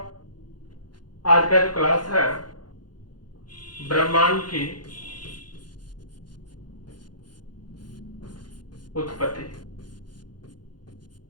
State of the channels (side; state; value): right; late; 0.71 ms